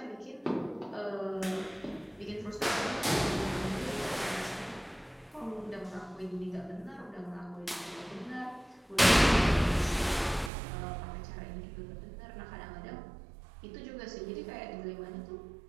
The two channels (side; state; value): left; drops out; at 10.5 s